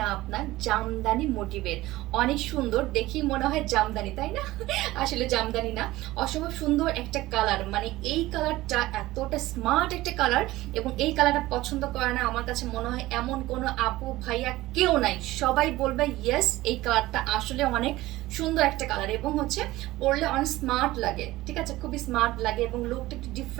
আপনার জামদানি মোটিভের। অনেক সুন্দর, দেখি মনে হয় জামদানি, তাই না? আসলে জামদানি না। অসম্ভব সুন্দর একটা কালার, মানে এই কালারটা এতটা স্মার্ট একটা কালার, এবং এই কালারটা পছন্দ করে না আমার কাছে মনে হয় এমন কোনো আপু ভাইয়া কেউ নাই। সবাই বলবে ইয়েস, এই কালারটা আসলে অনেক সুন্দর একটা কালার, এবং হচ্ছে পরলে অনেক স্মার্ট লাগে। ঠিক আছে, খুবই স্মার্ট লাগে এবং লুকটা একটু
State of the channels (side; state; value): left; quieter; 17.7 dB